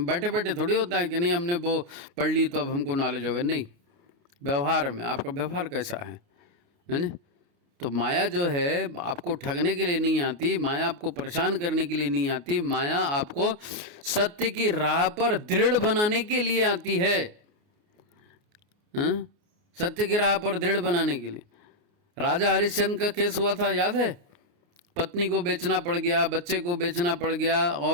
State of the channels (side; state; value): left; late; 29 ms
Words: बैठे बैठे थोड़ी होता है कि नहीं हमने वो पढ़ ली तो अब हमको नॉलेज हो गया, नहीं। व्यवहार में आपका व्यवहार कैसा है ना। तो माया जो है आपको ठगने के लिए नहीं आती, माया आपको परेशान करने के लिए नहीं आती, माया आपको सत्य की राह पर दृढ़ बनाने के लिए आती है। सत्य की राह पर दृढ़ बनाने के लिए। राजा हरिश्चंद्र का केस हुआ था, याद है? पत्नी को बेचना पड़ गया, बच्चे को बेचना पड़ गया,